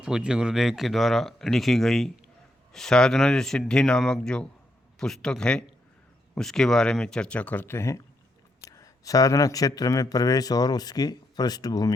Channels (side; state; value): both; normal; correlation 0.79